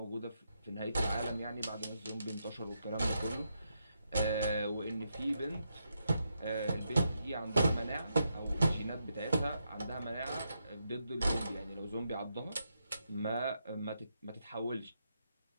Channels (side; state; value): both; inverted; correlation -0.82